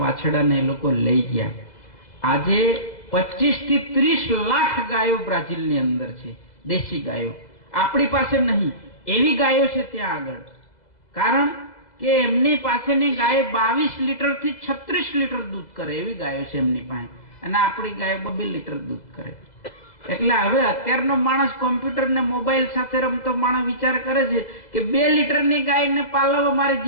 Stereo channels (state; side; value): late; right; 2.0 ms